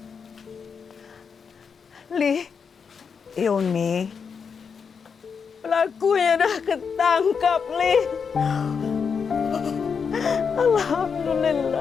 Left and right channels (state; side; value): quieter; right; 6.1 dB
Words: Li, Yuni, Pelakunya dah ketangkap, Li.